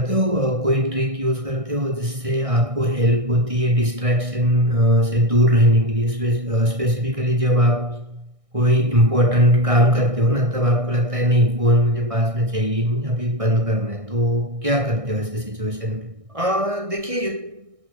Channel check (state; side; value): late; left; 1.6 ms